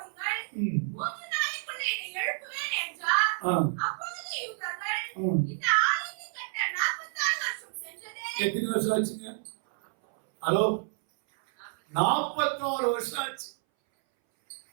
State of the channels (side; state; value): left; silent; 58 dB below the other